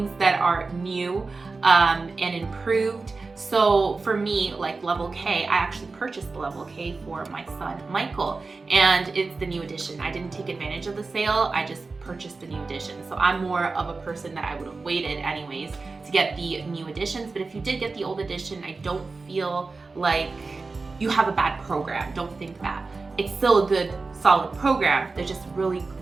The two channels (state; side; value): quieter; left; 3.9 dB